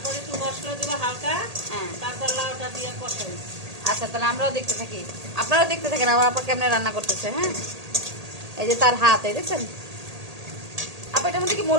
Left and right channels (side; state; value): left; late; 1.8 ms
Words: একটু মশলা দেবো হালকা। হ্যাঁ। তারপর লাউটা দিয়ে কষাই। আচ্ছা, তাহলে আমরাও দেখতে থাকি, আপনারাও দেখতে থাকেন আমার আপা কেমনে রান্না করতেছে। হ্যাঁ, এই যে তার হাত, এই দেখছেন আপা। এটার মধ্যে কি